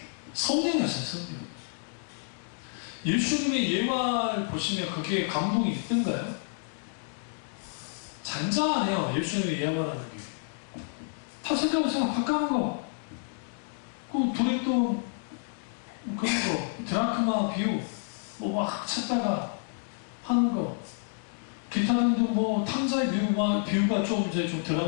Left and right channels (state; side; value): silent; right; digital silence